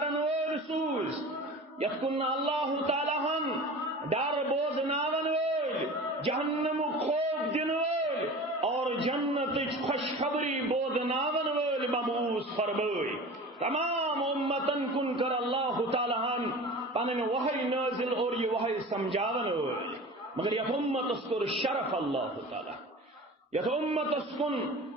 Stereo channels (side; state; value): both; normal; correlation 0.36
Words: وول سوز یتکن اللہ تعالیٰ ہن ڈر بوز ناون وول جہنم خوف دن وول اور جنت خوشخبری بود ناون وول مبعوث فرمائی تمام امتن کن کر اللہ تعالیٰ ہن پنن وحی نازل اور یہ وحی سمجھاون وول مگر یہ امت اسکر شرف اللہ تعالیٰ یہ امت اسکن